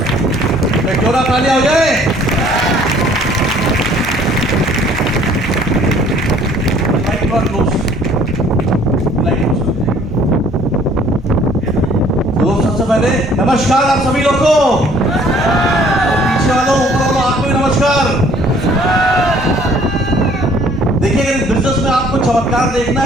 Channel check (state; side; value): normal; both; correlation 0.57